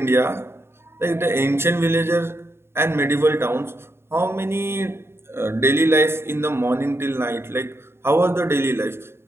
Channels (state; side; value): late; left; 0.12 ms